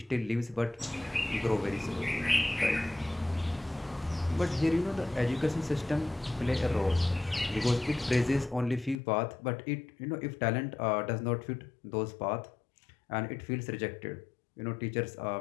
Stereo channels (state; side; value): drops out; right; at 9.0 s